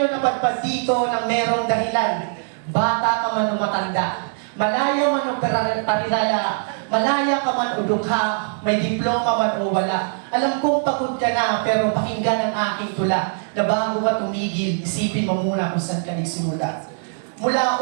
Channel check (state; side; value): silent; left; digital silence